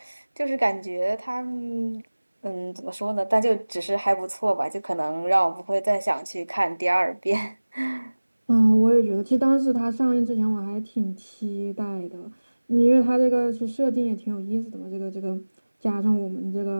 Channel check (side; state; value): both; inverted; correlation -1.00